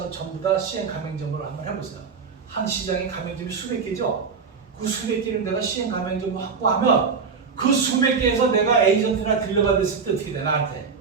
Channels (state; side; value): quieter; left; 5.5 dB